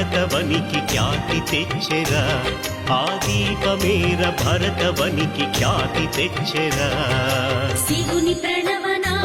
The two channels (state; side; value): identical; both; correlation 1.00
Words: ఖ్యాతి తెచ్చెరా ఆ దీపమేర భరతవనికి ఖ్యాతి తెచ్చెరా శివుని